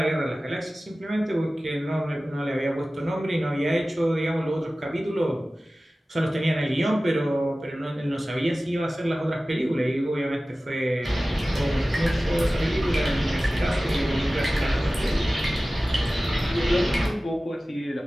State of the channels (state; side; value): normal; both; correlation 0.96